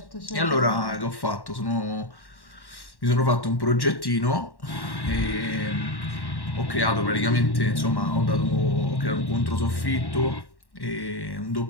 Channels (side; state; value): right; late; 1.1 ms